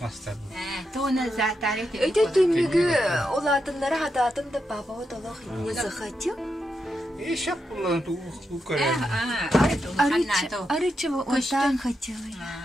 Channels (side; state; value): both; normal; correlation 0.85